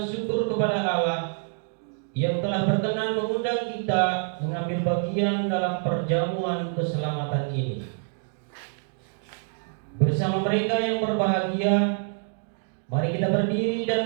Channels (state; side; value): silent; left; 61 dB below the other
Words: syukur kepada Allah yang telah berkenan mengundang kita mengambil bagian dalam perjamuan keselamatan ini. Bersama mereka yang berbahagia, mari kita berdiri dan